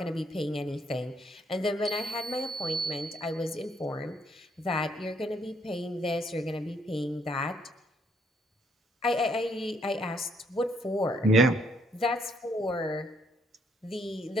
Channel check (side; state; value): both; normal; correlation 0.70